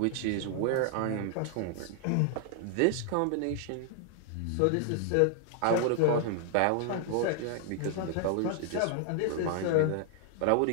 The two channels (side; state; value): both; different; correlation 0.00